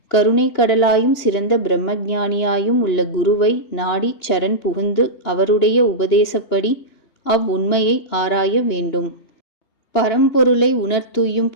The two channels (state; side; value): late; right; 3.2 ms